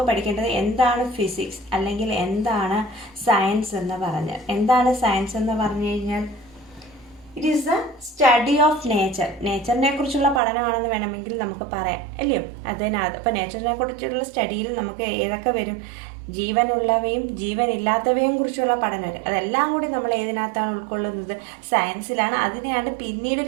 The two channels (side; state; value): left; drops out; at 10.4 s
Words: പഠിക്കേണ്ടത് എന്താണ് ഫിസിക്സ് അല്ലെങ്കിൽ എന്താണ് സയൻസ് എന്ന് പറഞ്ഞ്. എന്താണ് സയൻസ് എന്ന് പറഞ്ഞു കഴിഞ്ഞാൽ it is the study of nature. നേച്ചറിനെ കുറിച്ചുള്ള പഠനമാണെന്ന് വേണമെങ്കിൽ നമുക്ക് പറയാം, അല്ലയോ? അതിനകത്ത് ഇപ്പോൾ നേച്ചറിനെ കുറിച്ചുള്ള സ്റ്റഡിയിൽ നമുക്ക് ഏതൊക്കെ വരും? ജീവനുള്ളവയും ജീവനില്ലാത്തവയും കുറിച്ചുള്ള പഠനം. അതെല്ലാം കൂടി നമ്മൾ ഏതിനകത്താണ് ഉൾക്കൊള്ളുന്നത്? സയൻസിലാണ്. അതിനെയാണ് പിന്നീട്